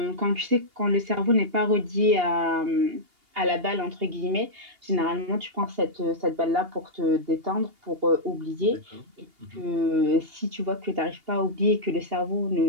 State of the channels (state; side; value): late; left; 2.8 ms